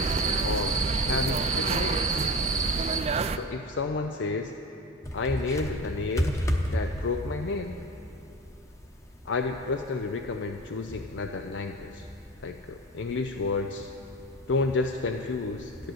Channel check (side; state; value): both; normal; correlation 0.31